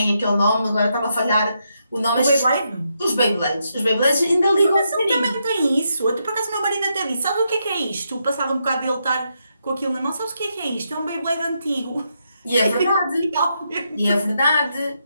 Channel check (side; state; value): both; inverted; correlation -0.81